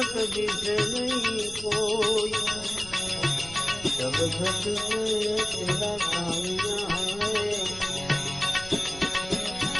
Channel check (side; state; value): right; noise; rumble, 18 dB below the sound